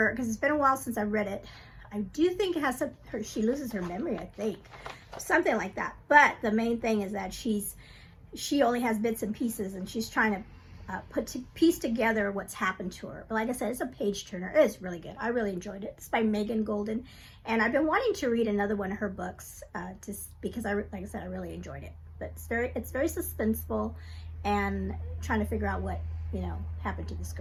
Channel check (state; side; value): identical; both; correlation 1.00